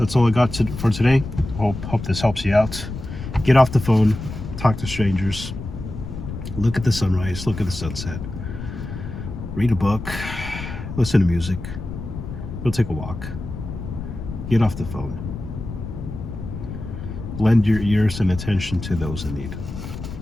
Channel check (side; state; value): left; noise; rumble, 9 dB below the sound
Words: all I got for today. Hope this helps you out. Get off the phone, talk to strangers, look at the sunrise, look at the sunset, read a book, listen to music, go take a walk, get off the phone. Lend your ears and attention to those in need.